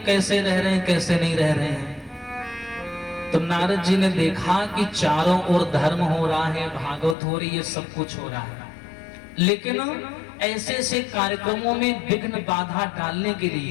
कैसे रह रहे हैं कैसे नहीं रह रहे हैं। तो नारद जी ने देखा कि चारों ओर धर्म हो रहा है, भागवत हो रही है, सब कुछ हो रहा है, लेकिन ऐसे ऐसे कार्यक्रमों में विघ्न बाधा डालने के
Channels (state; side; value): drops out; right; at 7.2 s